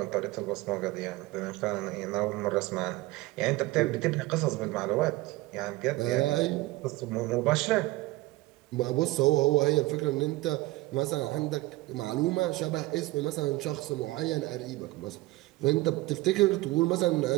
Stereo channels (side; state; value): left; quieter; 19.7 dB